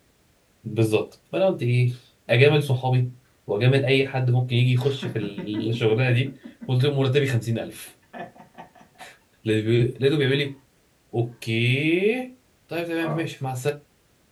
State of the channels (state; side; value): identical; both; correlation 1.00